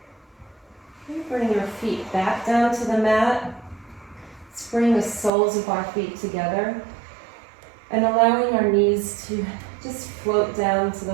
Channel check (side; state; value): left; drops out; at 5.3 s